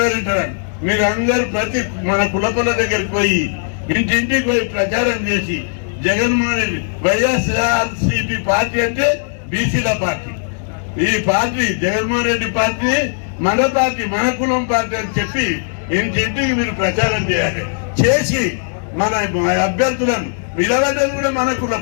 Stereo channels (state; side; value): silent; right; digital silence